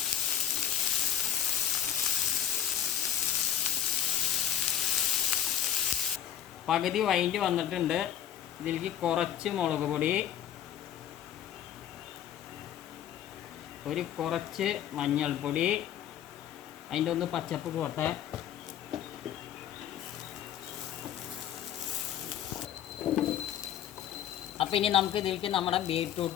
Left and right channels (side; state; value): right; quieter; 10.5 dB